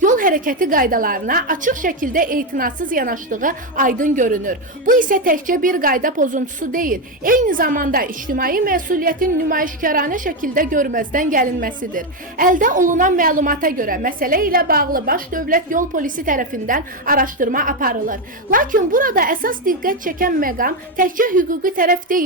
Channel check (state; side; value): normal; both; correlation 0.08